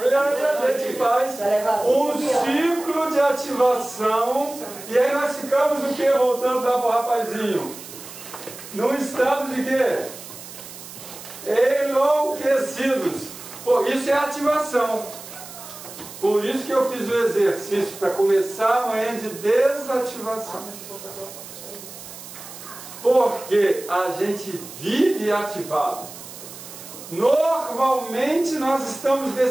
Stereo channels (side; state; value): right; noise; hiss, 14 dB below the sound